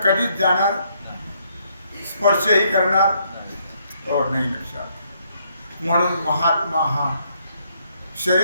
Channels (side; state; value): both; inverted; correlation -0.71